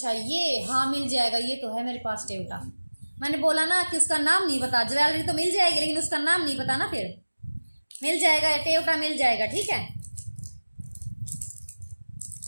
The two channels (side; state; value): both; inverted; correlation -1.00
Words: ये, हाँ मिल जाएगा, ये तो है मेरे पास टेवटा। मैंने बोला ना कि उसका नाम नहीं पता, ज्वेलरी तो मिल जाएगी लेकिन उसका नाम नहीं पता ना, फिर मिल जाएगा, टेवटा मिल जाएगा, ठीक है।